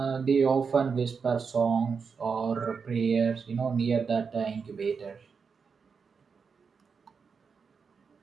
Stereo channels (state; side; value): quieter; left; 5.6 dB